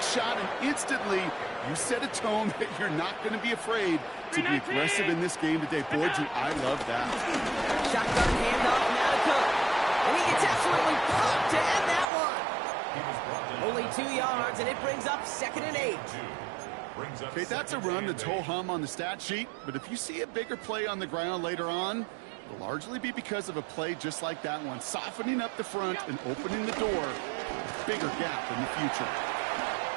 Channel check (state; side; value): drops out; left; at 12.1 s